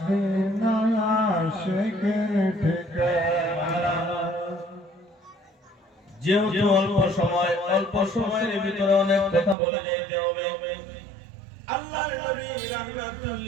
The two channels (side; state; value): left; drops out; at 9.6 s